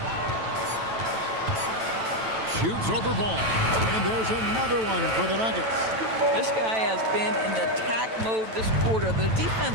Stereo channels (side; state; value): left; late; 9.1 ms